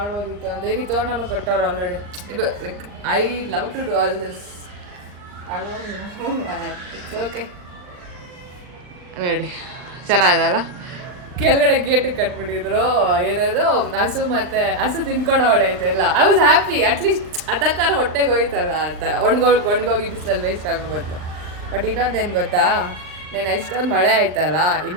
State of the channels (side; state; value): left; late; 39 ms